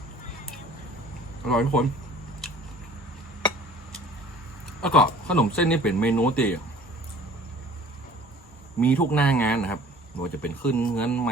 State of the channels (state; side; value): normal; both; correlation 0.50